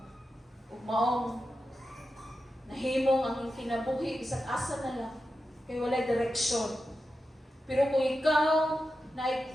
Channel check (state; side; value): normal; both; correlation 0.90